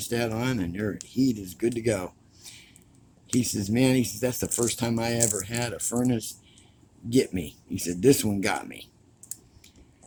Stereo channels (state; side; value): identical; both; correlation 1.00